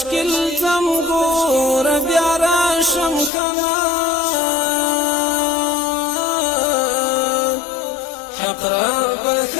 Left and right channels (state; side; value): drops out; right; at 3.3 s